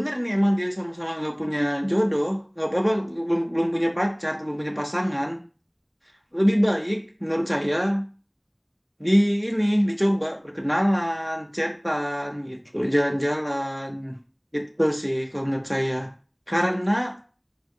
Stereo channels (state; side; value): identical; both; correlation 1.00